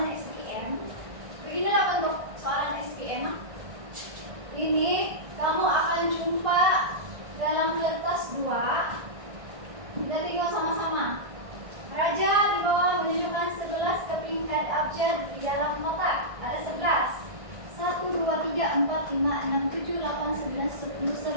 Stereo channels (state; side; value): late; left; 1.6 ms